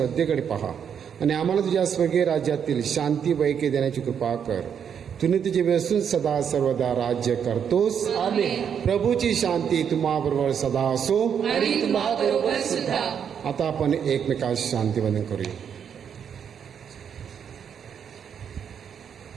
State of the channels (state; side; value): quieter; left; 7.8 dB